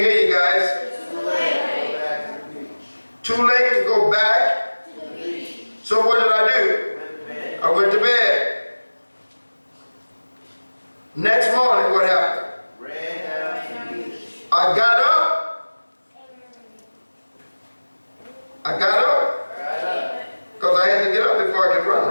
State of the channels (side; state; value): both; inverted; correlation -1.00